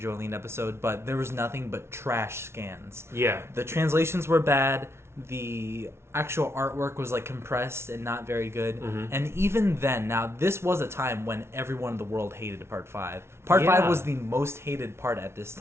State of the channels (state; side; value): late; left; 0.12 ms